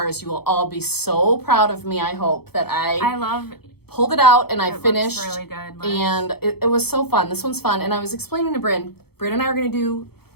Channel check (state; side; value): late; right; 0.96 ms